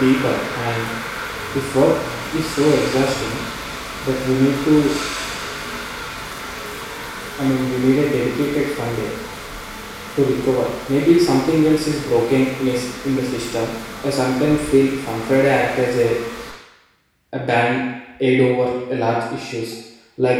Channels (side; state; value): both; identical; correlation 1.00